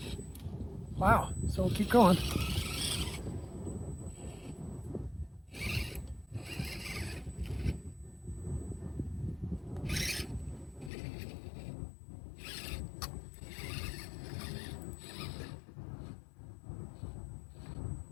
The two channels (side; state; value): right; drops out; at 10.9 s